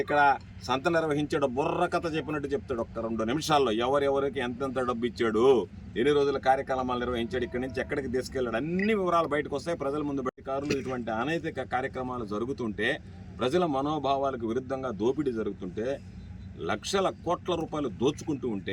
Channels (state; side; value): identical; both; correlation 1.00